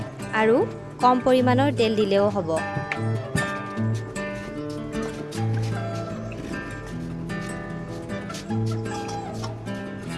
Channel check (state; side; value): identical; both; correlation 1.00